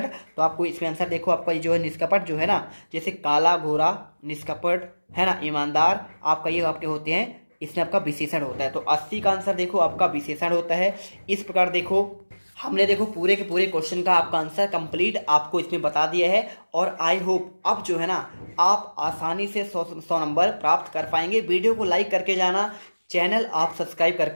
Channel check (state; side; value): inverted; both; correlation -1.00